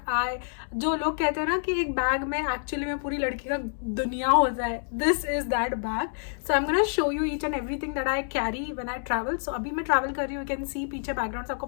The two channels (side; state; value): right; silent; digital silence